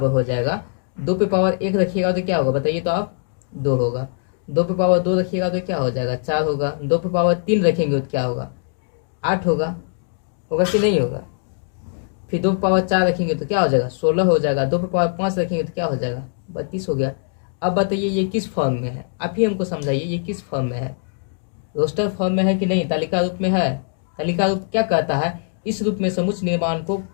हो जाएगा 2 पे पावर 1 रखिएगा तो क्या होगा बताइए, तो आप 2 होगा। 2 पे पावर 2 रखिएगा तो क्या हो जाएगा, 4 होगा। 2 पे पावर 3 रखेंगे तो क्या होगा, 8 होगा कि नहीं होगा। फिर 2 पे पावर 4 रखेंगे तो क्या हो जाएगा, 16 हो जाएगा। 2 पे पावर 5 रखेंगे तो क्या हो जाएगा, 32 हो गया। अब बताइए ये किस फॉर्म में है, आप ही हमको समझाइए, ये किस फॉर्म में है, रोस्टर फॉर्म में है कि नहीं, तालिका रूप में है। तालिका रूप क्या कहता है, इस रूप में समुच्चय निर्माण को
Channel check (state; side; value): silent; right; digital silence